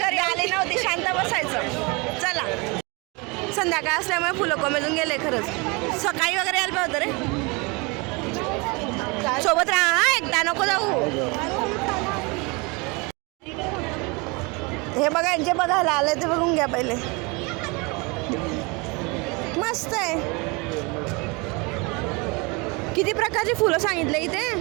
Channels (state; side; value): quieter; left; 28.0 dB